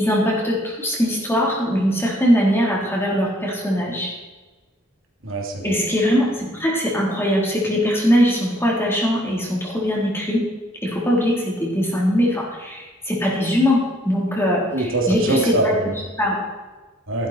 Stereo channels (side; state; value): both; normal; correlation 0.63